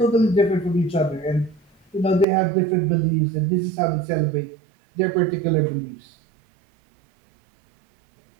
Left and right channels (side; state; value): left; drops out; at 2.2 s